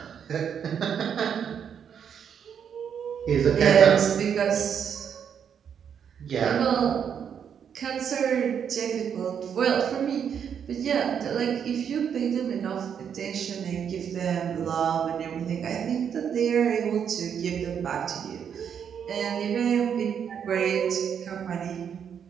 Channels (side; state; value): left; quieter; 7.9 dB